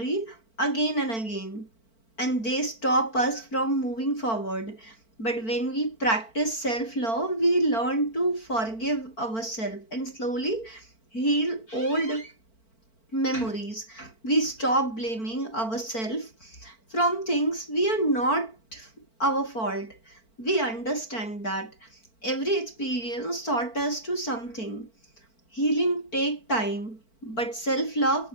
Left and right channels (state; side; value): late; right; 4.5 ms